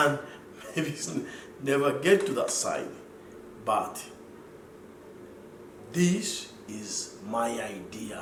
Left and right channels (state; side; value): identical; both; correlation 1.00